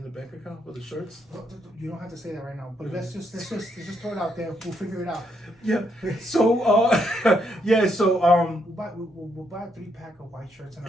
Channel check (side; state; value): both; normal; correlation 0.76